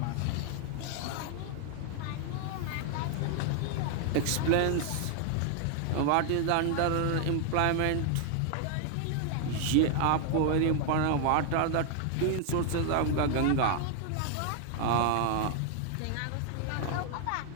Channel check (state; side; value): different; both; correlation 0.00